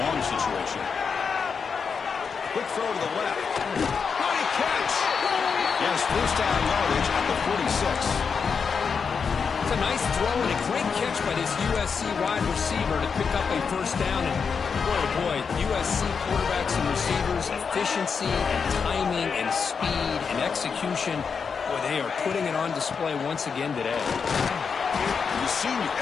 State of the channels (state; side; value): quieter; right; 5.9 dB